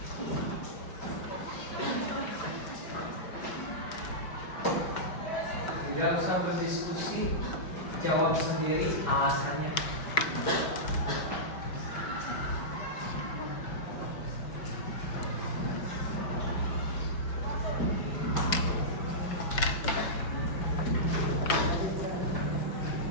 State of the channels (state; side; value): late; right; 5.2 ms